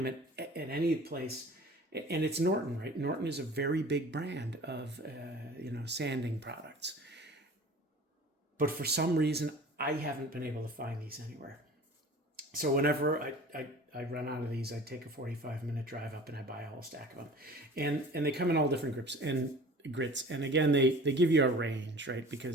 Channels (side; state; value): both; normal; correlation 0.43